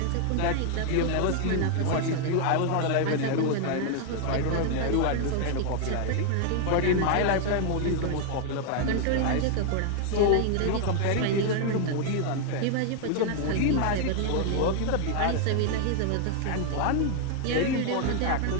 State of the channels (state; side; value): different; both; correlation 0.00